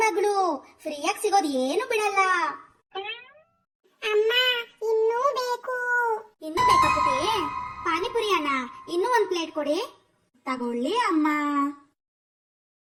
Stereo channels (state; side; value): identical; both; correlation 1.00